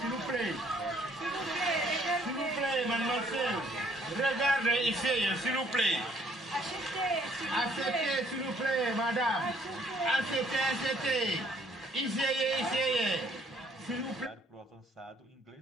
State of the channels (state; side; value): normal; both; correlation 0.63